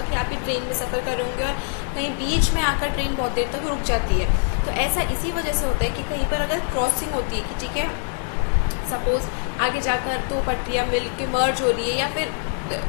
कि आप भी ट्रेन में सफ़र कर रहे होंगे और कहीं बीच में आकर ट्रेन बहुत देर तक रुक जाती है। तो ऐसा इसी वजह से होता है कि कहीं पर अगर क्रॉसिंग होती है कि ठीक है सपोज आगे जाकर दो पटरियाँ मिल के मर्ज हो रही है या फिर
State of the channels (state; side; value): silent; right; 56 dB below the other